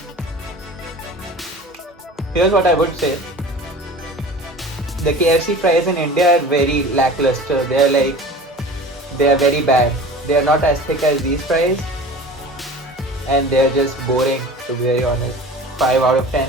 Here's what I would say. The KFC fries in India are very lackluster. They're like They are very bad. They are not as thick as these fries, and they are just boring, to be very honest. 5 out of 10,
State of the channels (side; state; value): both; normal; correlation 0.38